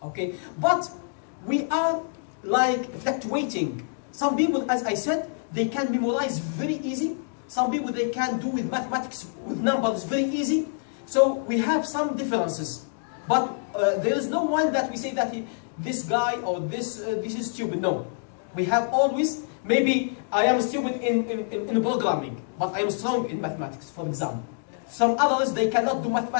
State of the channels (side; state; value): right; silent; digital silence